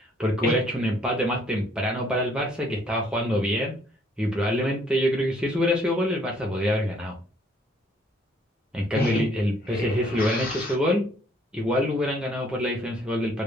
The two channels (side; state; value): both; normal; correlation 0.63